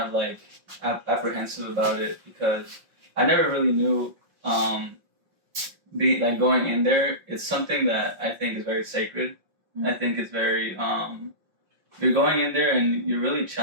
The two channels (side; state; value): left; late; 5.6 ms